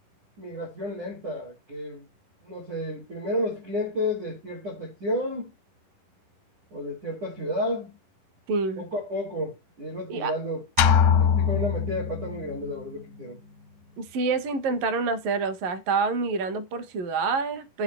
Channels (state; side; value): late; left; 9.9 ms